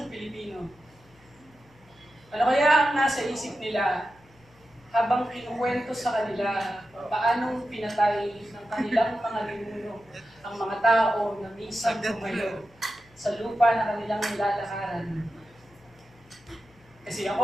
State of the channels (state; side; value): noise; left; hum, 29 dB below the sound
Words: Pilipino. Ano kaya ang nasa isip nila habang kinukwento sa kanila paanong pinatay ng kanilang mga ninuno ang mga tao na minsan tumayo sa lupa na kanilang nilalakaran? Kasi